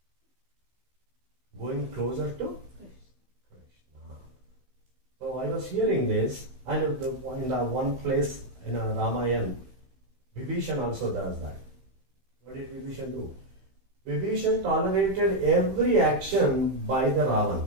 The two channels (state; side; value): late; left; 15 ms